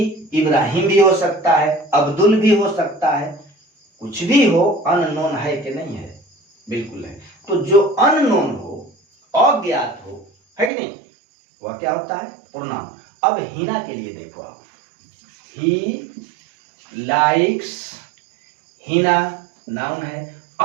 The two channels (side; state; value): left; drops out; at 10.7 s